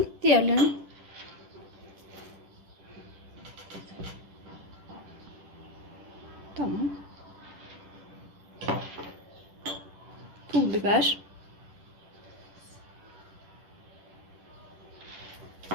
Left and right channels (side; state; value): left; late; 10 ms